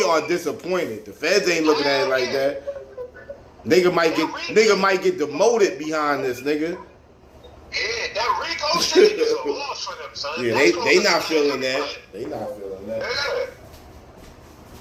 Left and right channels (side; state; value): both; identical; correlation 1.00